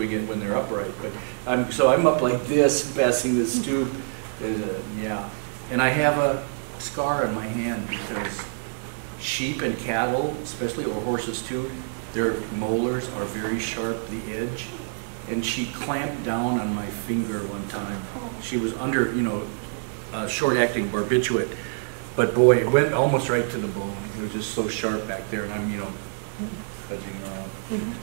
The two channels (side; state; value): left; silent; digital silence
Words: it when they're upright. But so I'm up like this, passing this tube. Yeah. And I have a scar on my hand because sheep and cattle, especially, or horses too, their molars are very sharp, the edge. And she clamped down on my finger one time. She was under, you know, short-acting barbiturate. But boy, it went almost right to the bone. It was just so sharp back there, and I'm, you know,